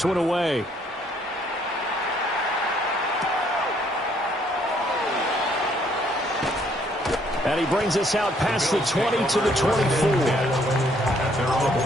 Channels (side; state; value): both; normal; correlation 0.66